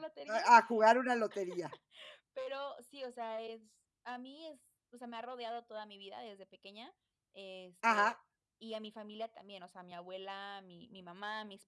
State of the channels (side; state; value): both; identical; correlation 1.00